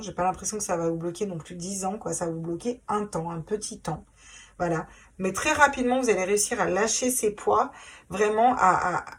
j'ai pas l'impression que ça va vous bloquer non plus 10 ans, quoi, ça va vous bloquer un temps, un petit temps, voilà. Mais très rapidement, vous allez réussir à lâcher ces poids, vraiment à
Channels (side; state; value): both; identical; correlation 1.00